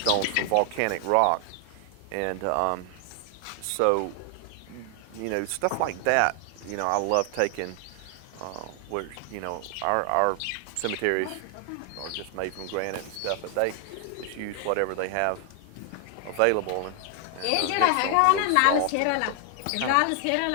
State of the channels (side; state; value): both; different; correlation 0.00